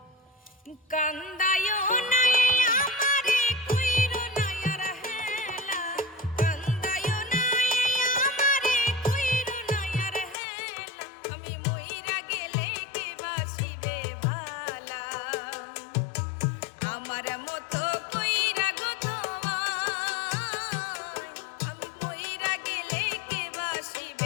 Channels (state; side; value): drops out; right; at 10.4 s